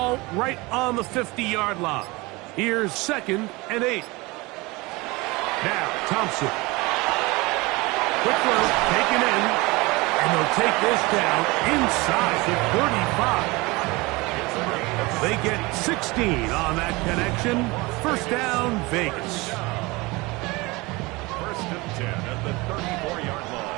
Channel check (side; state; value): left; quieter; 23.6 dB